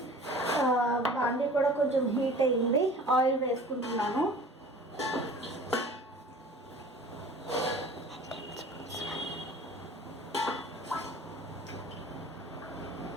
బాండీ కూడా కొంచెం హీట్ అయ్యింది. ఆయిల్ వేసుకుంటున్నాను.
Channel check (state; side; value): normal; both; correlation 0.44